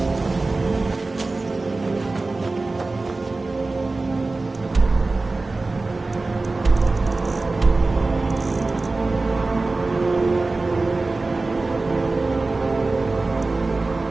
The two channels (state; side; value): quieter; left; 3.4 dB